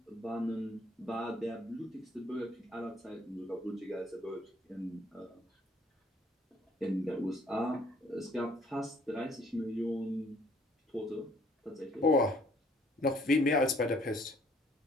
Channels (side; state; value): both; normal; correlation 0.61